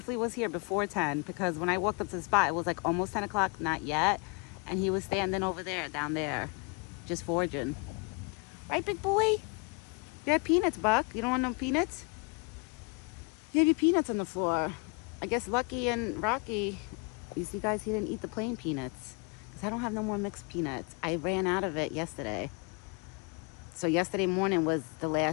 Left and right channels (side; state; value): right; quieter; 31.2 dB